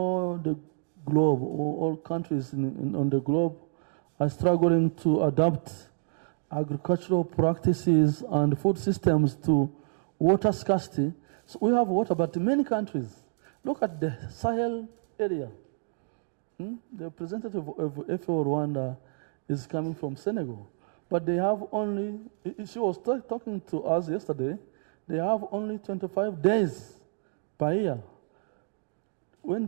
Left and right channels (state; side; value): silent; left; digital silence